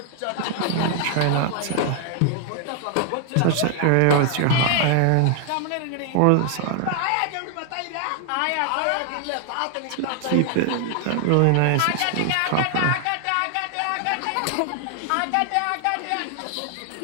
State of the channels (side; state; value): both; different; correlation 0.00